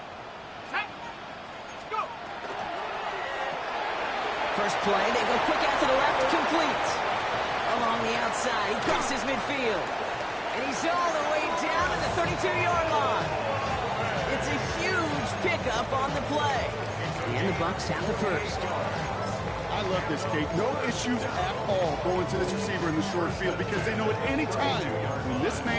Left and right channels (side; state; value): both; identical; correlation 1.00